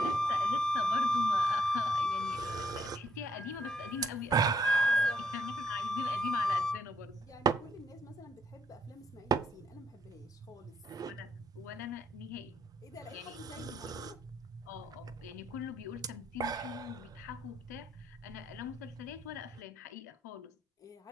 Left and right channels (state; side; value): normal; both; correlation 0.72